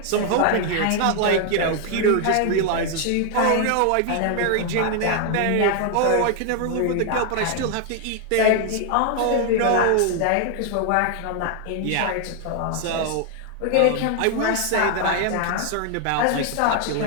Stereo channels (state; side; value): different; both; correlation 0.00